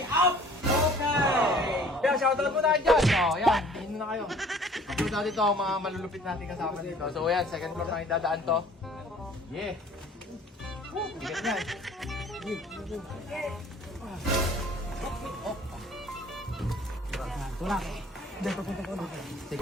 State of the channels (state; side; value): normal; both; correlation 0.52